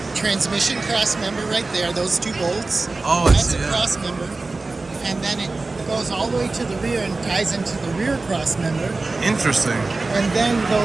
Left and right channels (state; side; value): quieter; left; 3.5 dB